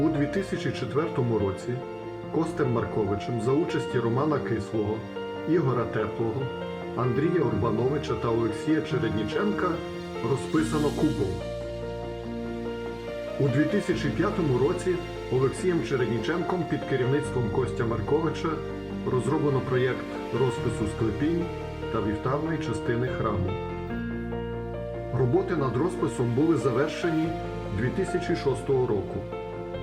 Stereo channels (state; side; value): identical; both; correlation 1.00